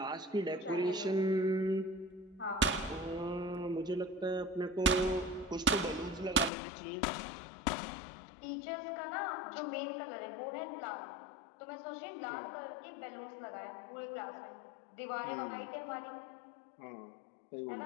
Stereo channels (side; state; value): right; drops out; at 6.5 s